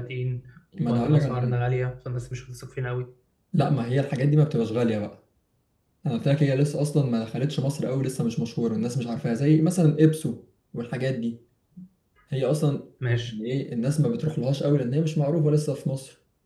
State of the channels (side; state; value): both; identical; correlation 1.00